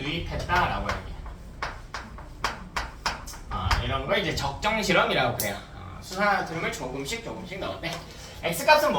유입했다라고 얘기해. 이런 걸 이제 적정 실험이라고 그래요. 수산화듐을 조금씩 넣었대. X 값은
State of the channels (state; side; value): identical; both; correlation 1.00